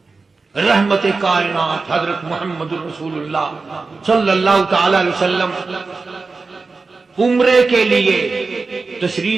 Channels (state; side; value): quieter; left; 4.1 dB